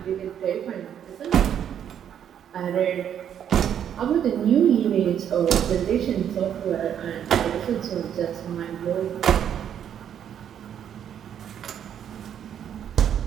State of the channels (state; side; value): quieter; left; 9.3 dB